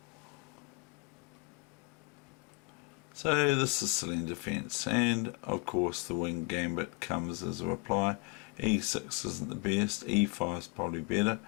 So this is Celine defence, and of course the wing gambit comes as a reply. E6 isn't the best, E5 is probably better.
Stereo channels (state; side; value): quieter; right; 30.7 dB